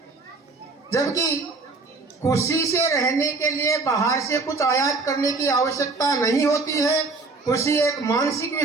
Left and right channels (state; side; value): quieter; left; 3.7 dB